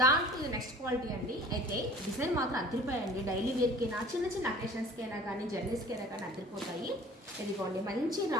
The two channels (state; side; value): normal; both; correlation 0.47